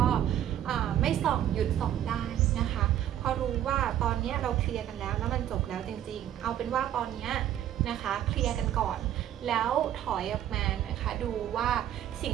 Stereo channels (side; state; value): left; quieter; 11.4 dB